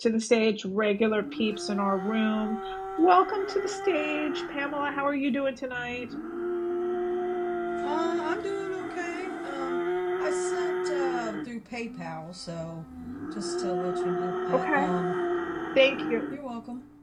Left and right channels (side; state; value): both; identical; correlation 1.00